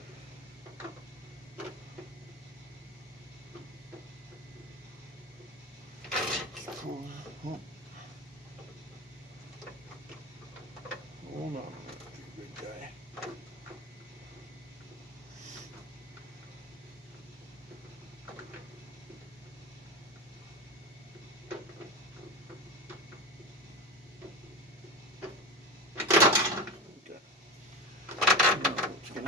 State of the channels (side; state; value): both; normal; correlation 0.24